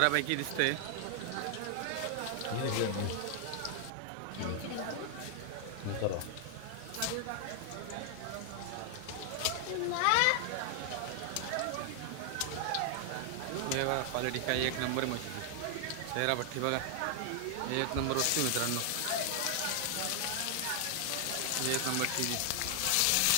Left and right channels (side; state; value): both; different; correlation 0.00